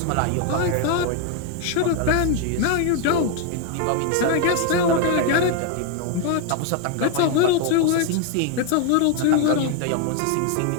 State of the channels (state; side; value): different; both; correlation 0.01